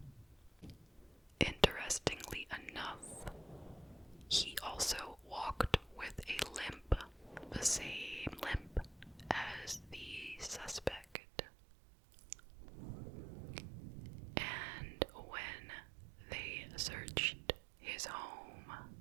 Interestingly enough, he also walked with a limp, the same limp as the suspect. And when they searched his home,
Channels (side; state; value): left; drops out; at 11.2 s